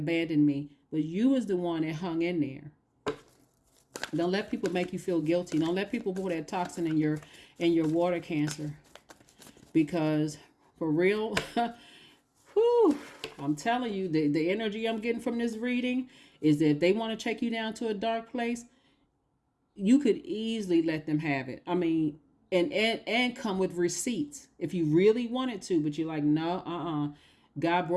me. But you was the one that hung in there. Don't let people make you feel guilty. Don't let people put that toxin in your water, Cancer. Because for real, whew, I'm telling you, the energy I'm getting from this reading is that if they want to take you down to a dark place, you could easily let them have it. I mean, and come with receipts if you really wanted to, but you're like, no, God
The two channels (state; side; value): identical; both; correlation 1.00